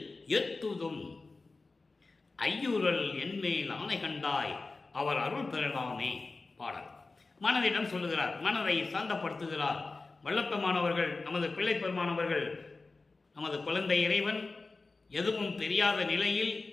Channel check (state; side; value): quieter; right; 3.7 dB